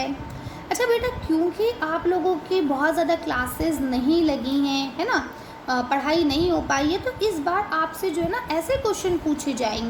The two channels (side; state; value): both; identical; correlation 1.00